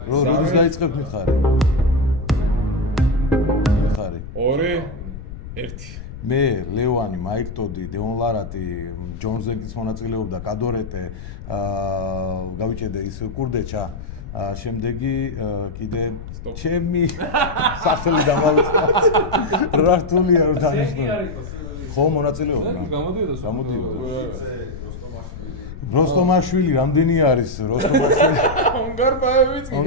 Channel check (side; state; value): left; noise; rumble, 11 dB below the sound